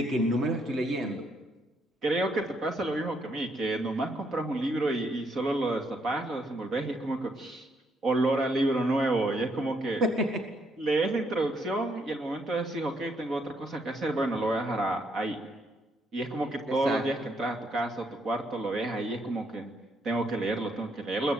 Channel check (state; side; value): normal; both; correlation 0.73